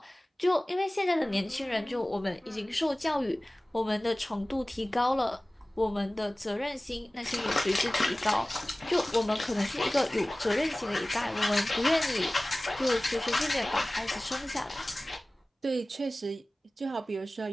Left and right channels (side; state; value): both; normal; correlation 0.98